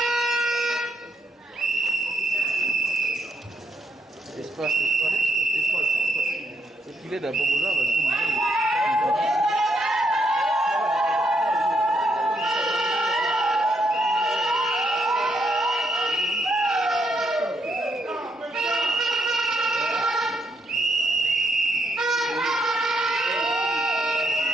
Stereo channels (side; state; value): both; normal; correlation 0.76